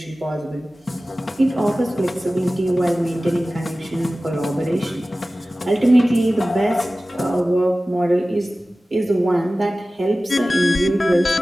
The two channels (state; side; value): normal; both; correlation 0.96